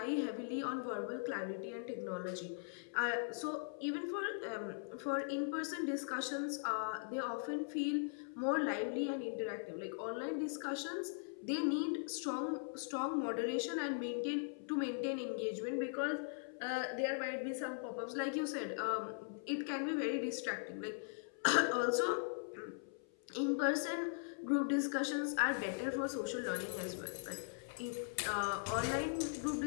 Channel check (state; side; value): silent; right; 51 dB below the other